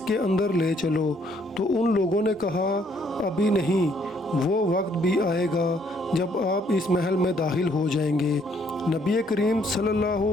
کے اندر لے چلو۔ تو ان لوگوں نے کہا، ابھی نہیں، وہ وقت بھی آئے گا جب آپ اس محل میں داخل ہو جائیں گے۔ نبی کریم صلی اللہ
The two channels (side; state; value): both; normal; correlation 0.66